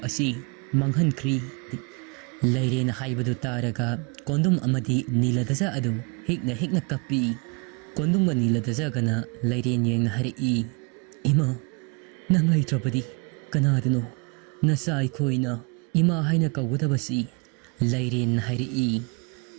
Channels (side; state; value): left; quieter; 31.9 dB